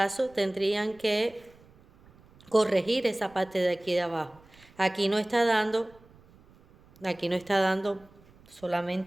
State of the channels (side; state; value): right; noise; rumble, 27 dB below the sound